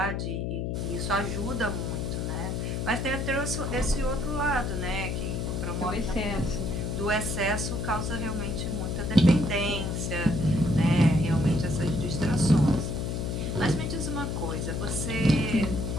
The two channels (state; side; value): noise; left; hum, 1 dB below the sound